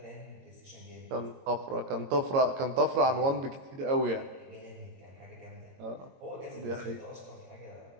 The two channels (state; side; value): late; left; 22 ms